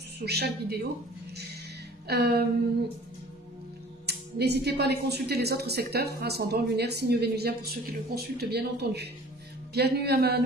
chaque vidéo. N'hésitez pas à aller consulter les autres secteurs, ascendant, lunaire, signe vénusien pour ceux qui le consultent bien entendu. Bienvenue à ma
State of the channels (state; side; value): normal; both; correlation 0.48